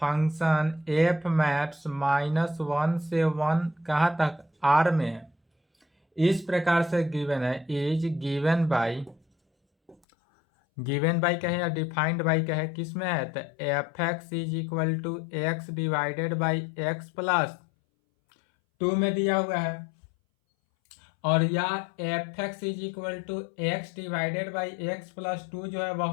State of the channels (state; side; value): drops out; right; at 10.0 s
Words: एफ मैप्स -1 से 1 कहाँ तक, आर में है। इस प्रकार से गिवन है इज गिवन बाई कहे या डिफाइंड बाई कहे, किस में है, तो f x is equal to x divided by x plus 2 में दिया हुआ है, और यह f x is equal to x divided by x plus 2 जो है